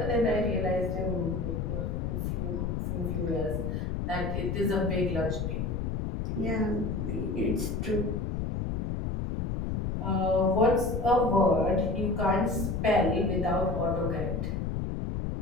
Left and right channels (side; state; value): left; noise; rumble, 1 dB below the sound